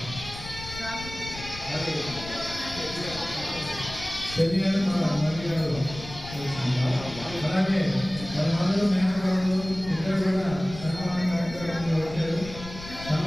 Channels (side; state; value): left; noise; rumble, 13 dB below the sound